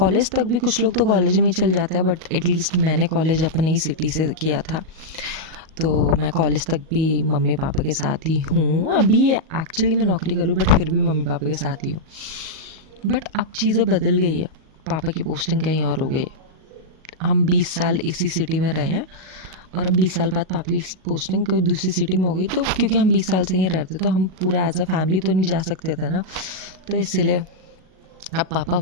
तक भी कुछ लोग तो कॉलेज में ही चल जाते हैं, बट एटलीस्ट मैंने कॉलेज अपनी ही सिटी से किया था, तो मैं कॉलेज तक भी मम्मी पापा के साथ ही हूँ। अभी एक्चुअली मैं नौकरी करूँ, बट फिर भी मम्मी पापा के साथ ही हूँ। बट अब चीज़ें बदल गई है, पापा की पोस्टिंग कहीं और हो गई है। हम 20 साल इसी सिटी में रहे हैं, और अब 20 साल बाद पापा की पोस्टिंग कोई दूसरी सिटी में हो गई, तो क्योंकि हम 20 साल से यहीं रहते तो हम पूरा एज अ फैमिली तो नहीं जा सकते थे ना, तो इसीलिए अब पापा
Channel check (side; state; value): left; late; 38 ms